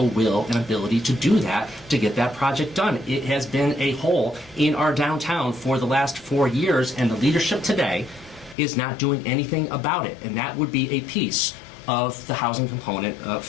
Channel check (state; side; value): drops out; right; at 8.6 s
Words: will and ability to do that, to get that project done. It has been a hole in our downtown for the last 4 years, and the leadership today is not doing anything about it. And that would be a piece of the housing component